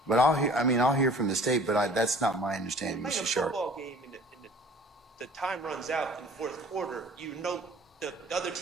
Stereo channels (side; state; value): both; normal; correlation 0.49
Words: but I'll hear from the state, but that's not my understanding, Mr. Shard. In a football game, the time runs out in the fourth quarter. The other